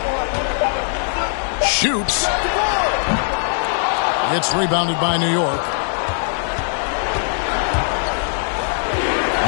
Shoots. It's rebounded by New York.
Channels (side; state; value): right; silent; 62 dB below the other